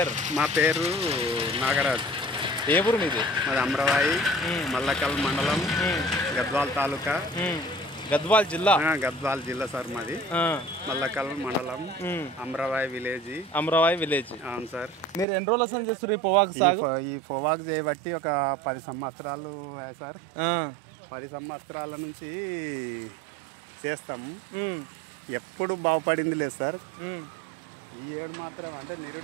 మా పేరు నాగరాజు. ఏ ఊరు మీది? మాది అమరవాయి, మల్లకల్ మండలం, గద్వాల్ తాలూకా, గద్వాల్ జిల్లా. గద్వాల్ జిల్లా సార్ మాది. మల్లకల్ మండలం, అమరవాయి విలేజ్. అమరవాయి విలేజ్. అవును సార్. మీరు ఎన్ని రోజులు అసలు చేస్తారు ఈ పొగాకు సాగు? ఈ పొగాకు చేయబట్టి ఒక 10 సంవత్సరాలు సార్. 10 సంవత్సరాల నుంచి చేస్తాము. ఎప్పుడు బాగుపడింది లేదు సార్. ఈ ఏడు మాత్రం అంటే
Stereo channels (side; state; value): left; drops out; at 15.2 s